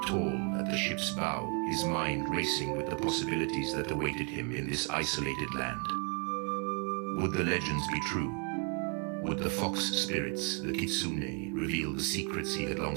tall at the ship's bow, his mind racing with the possibilities that awaited him in this isolated land. Would the legends be true? Would the fox spirits, the kitsune, reveal the secrets he had long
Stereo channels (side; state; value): left; quieter; 35.5 dB